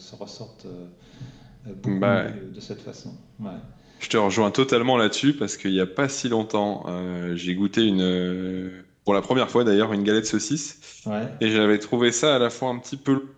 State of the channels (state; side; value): identical; both; correlation 1.00